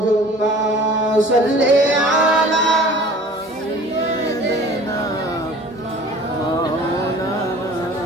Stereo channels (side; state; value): both; normal; correlation 0.46